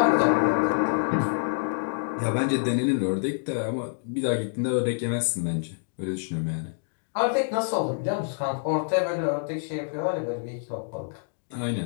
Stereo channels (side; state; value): right; silent; digital silence